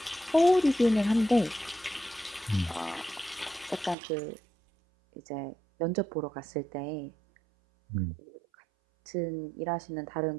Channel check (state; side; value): drops out; left; at 4.0 s